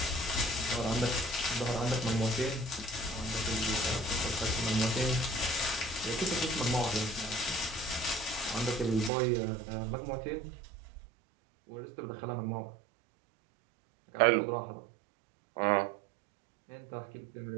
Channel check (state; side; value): drops out; left; at 9.1 s